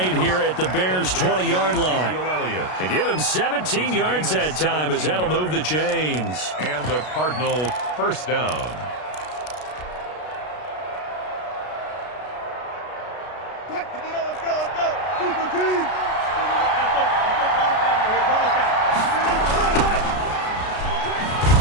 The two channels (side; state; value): right; late; 33 ms